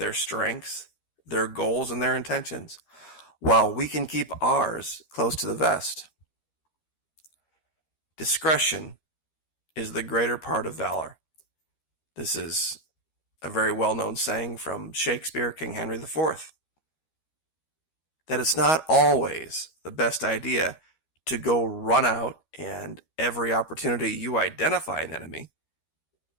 strengths, their goals, and their intentions, while we can keep ours close to the vest. Discretion is the greater part of valor. This is a very well-known saying from Shakespeare, King Henry IV, that it's not always the best idea to go run out and every opportunity you identify an enemy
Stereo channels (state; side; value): late; right; 13 ms